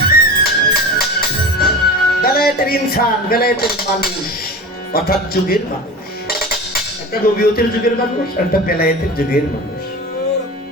ইনসান, বেলায়েতের মানুষ, অর্থাৎ যুগের মানুষ। একটা নবীয়তের যুগের মানুষ, একটা বেলায়েতের যুগের মানুষ।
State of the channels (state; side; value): normal; both; correlation 0.32